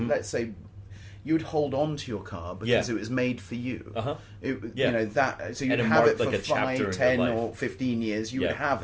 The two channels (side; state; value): both; identical; correlation 1.00